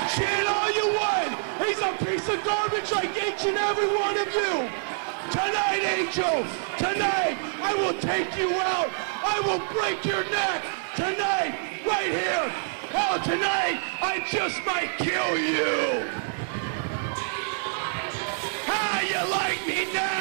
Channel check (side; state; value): left; silent; 61 dB below the other